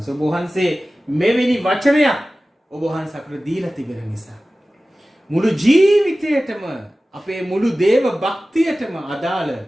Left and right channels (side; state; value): both; normal; correlation 0.96